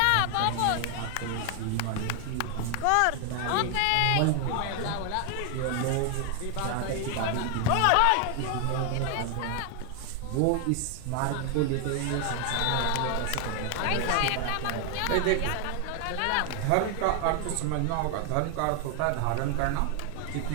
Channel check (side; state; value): both; different; correlation 0.00